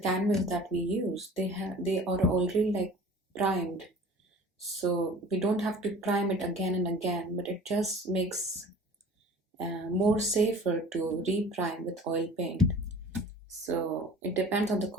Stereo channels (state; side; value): normal; both; correlation 0.44